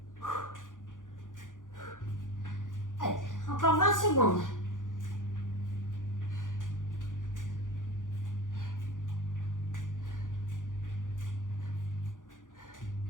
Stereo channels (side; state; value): right; late; 0.88 ms